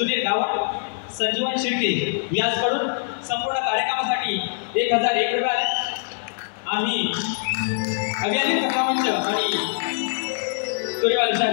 गावट, संजीवन शिर्के यांच्याकडून संपूर्ण कार्यक्रमासाठी 1001 रुपये आले. आम्ही अभियानिक मंच आणि सूर्यवाली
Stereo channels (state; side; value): silent; right; digital silence